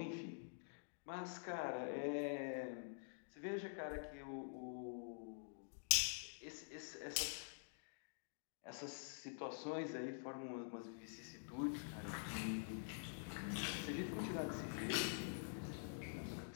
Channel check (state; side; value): silent; right; digital silence